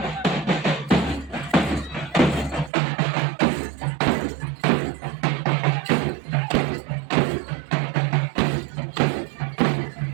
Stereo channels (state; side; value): drops out; left; at 2.7 s